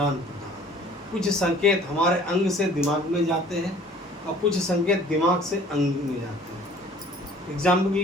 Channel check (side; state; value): both; normal; correlation 0.51